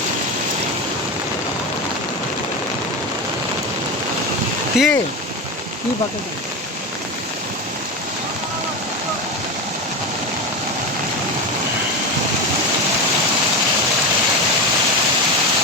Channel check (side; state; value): both; normal; correlation 0.19